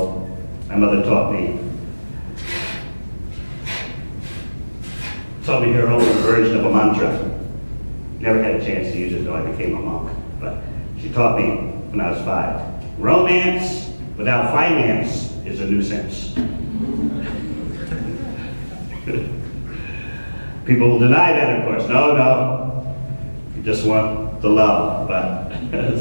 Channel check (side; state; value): both; inverted; correlation -1.00